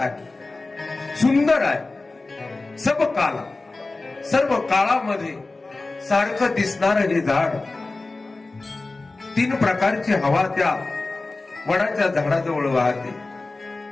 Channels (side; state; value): right; quieter; 3.3 dB